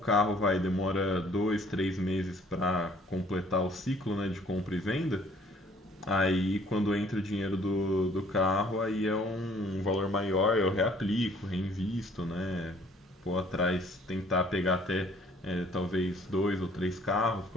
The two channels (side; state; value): both; normal; correlation 0.58